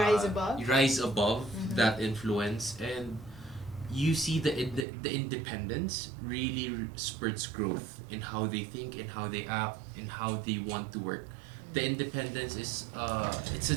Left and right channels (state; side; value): drops out; left; at 4.9 s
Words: above that influence, and you see the independence really spurts growth in how they think, in how they act, in how they want to work. The independence is it's a